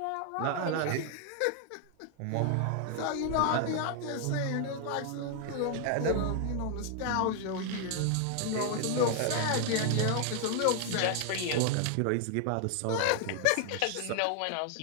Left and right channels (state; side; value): different; both; correlation 0.00